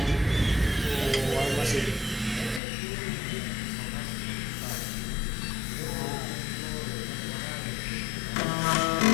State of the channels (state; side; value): drops out; right; at 2.6 s